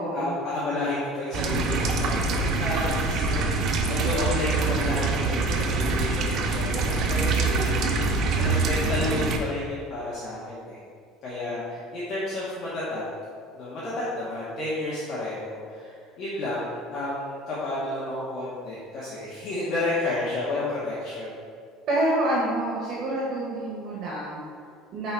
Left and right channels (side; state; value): both; normal; correlation 0.42